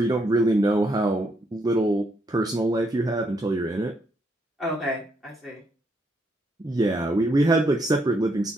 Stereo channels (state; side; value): normal; both; correlation 0.75